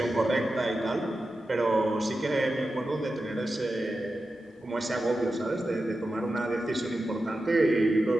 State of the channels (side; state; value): both; normal; correlation 0.91